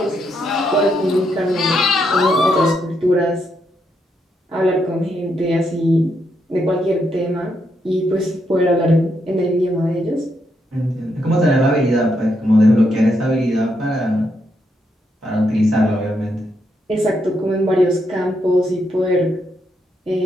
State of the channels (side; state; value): both; normal; correlation 0.79